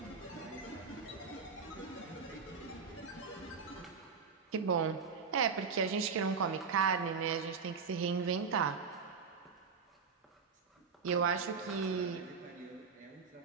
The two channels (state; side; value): quieter; left; 5.6 dB